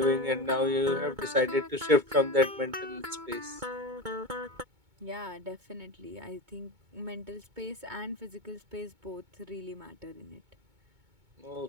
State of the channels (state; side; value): late; left; 2.2 ms